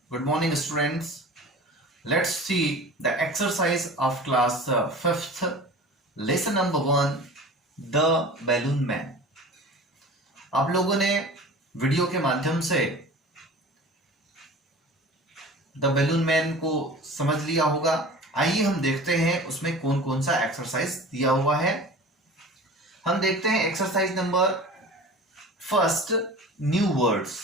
Good morning, students. Let's see the exercise of class 5th, lesson number 1, The Balloon Man. आप लोगों ने video के माध्यम से the balloon man को समझ लिया होगा। आइए हम देखते हैं उसमें कौन कौन सा एक्सरसाइज दिया हुआ है। हम देखते हैं exercise number first, new words,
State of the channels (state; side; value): normal; both; correlation 0.39